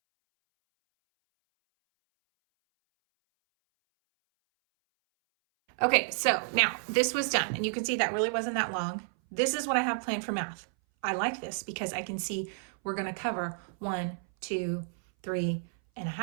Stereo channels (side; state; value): left; silent; 57 dB below the other